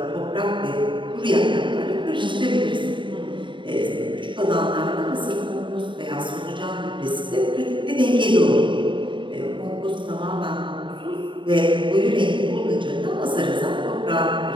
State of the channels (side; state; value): left; late; 0.23 ms